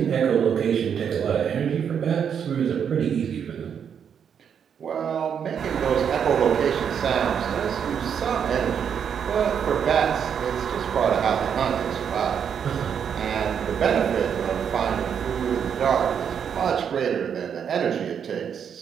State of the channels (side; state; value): left; quieter; 7.8 dB